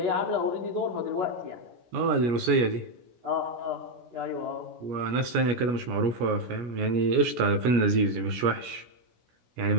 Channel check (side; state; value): left; late; 17 ms